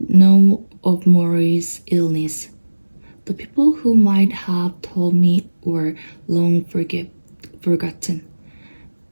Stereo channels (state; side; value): inverted; both; correlation -1.00